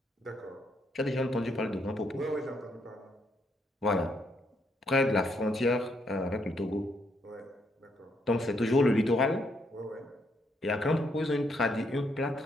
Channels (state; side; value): normal; both; correlation 0.74